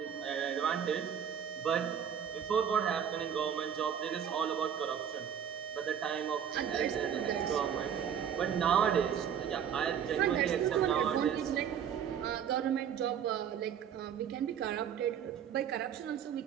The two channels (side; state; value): left; quieter; 8.5 dB